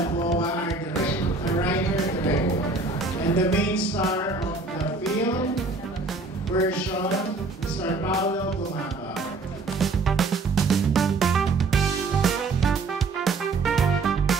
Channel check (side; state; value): left; quieter; 3.7 dB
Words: our writer-director. And the main star of the film version, Mr. Paulo Gumaba.